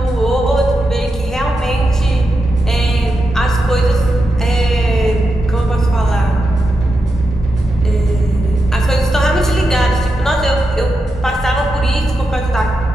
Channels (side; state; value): both; normal; correlation 0.87